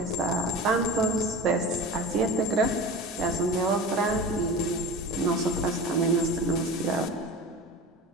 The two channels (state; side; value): normal; both; correlation 0.32